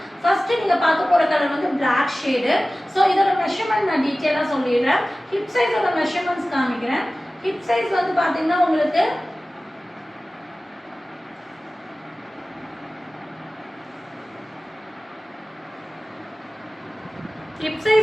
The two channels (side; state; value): both; normal; correlation 0.97